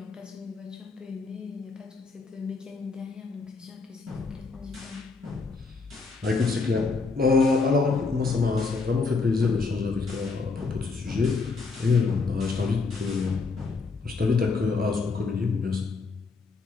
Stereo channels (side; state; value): right; quieter; 4.2 dB